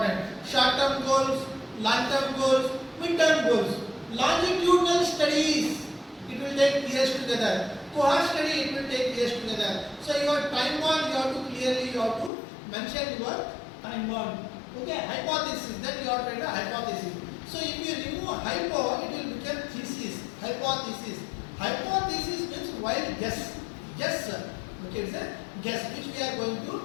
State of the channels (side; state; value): right; drops out; at 12.3 s